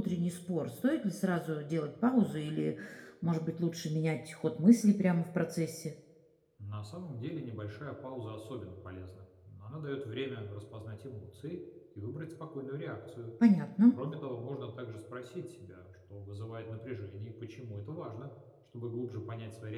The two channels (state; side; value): identical; both; correlation 1.00